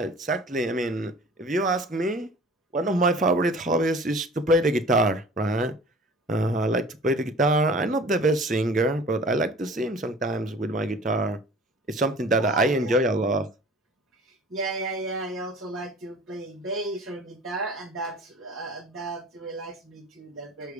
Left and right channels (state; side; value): normal; both; correlation 0.45